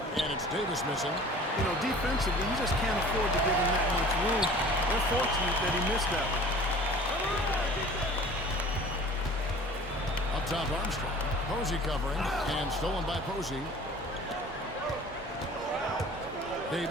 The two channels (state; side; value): normal; both; correlation 0.45